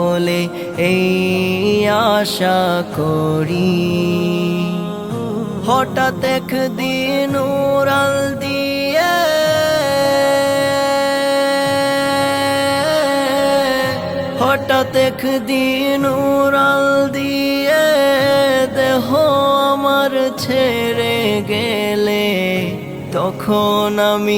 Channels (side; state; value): both; identical; correlation 1.00